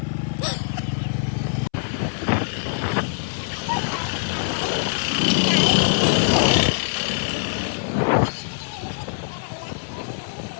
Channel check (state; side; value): silent; right; 62 dB below the other